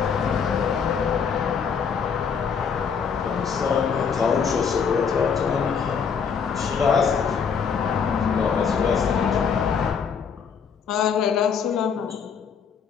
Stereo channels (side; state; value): right; quieter; 6.5 dB